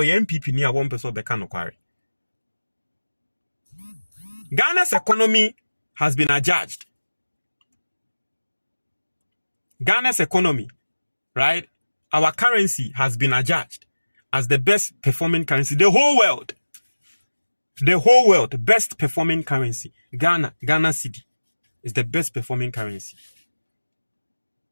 ye MPP ni a won peso be ka no kware Ghana's economy has been adjudged. Ghana's economy, right? Our currency has been adjudged as the best performing currency. The whole world, best performing currency. Ghana cedi is the best performing currency.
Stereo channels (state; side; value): inverted; both; correlation -1.00